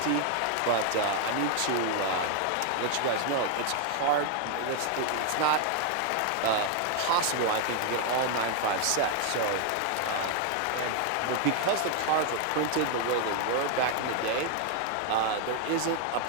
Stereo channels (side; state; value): both; different; correlation 0.00